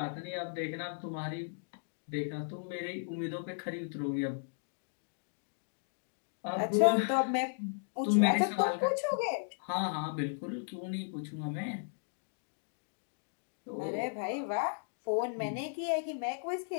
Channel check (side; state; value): right; silent; digital silence